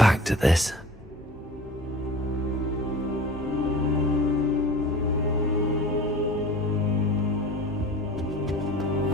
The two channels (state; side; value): normal; both; correlation 0.40